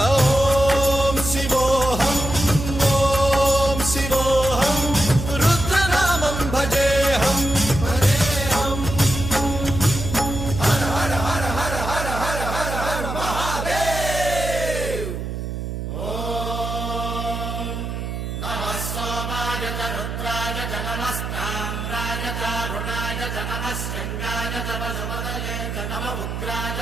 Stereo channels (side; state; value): right; noise; hum, 5 dB below the sound